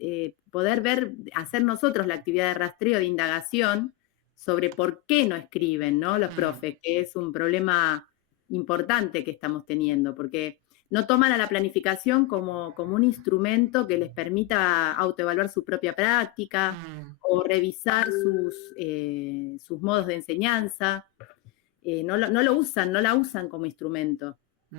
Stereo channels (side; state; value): right; quieter; 18.1 dB